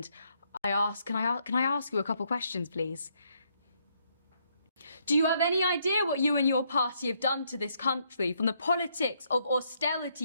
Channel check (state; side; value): inverted; both; correlation -0.73